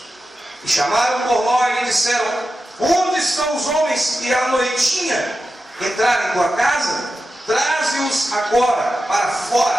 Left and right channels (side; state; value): both; normal; correlation 0.91